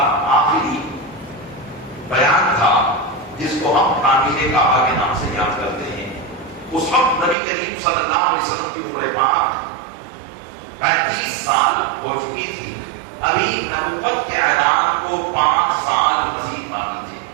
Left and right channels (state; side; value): drops out; left; at 7.4 s